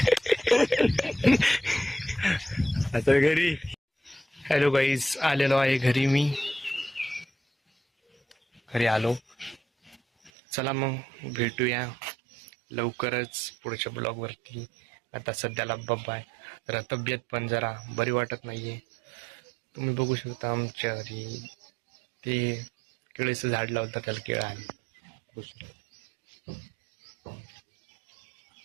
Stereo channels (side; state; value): left; drops out; at 10.3 s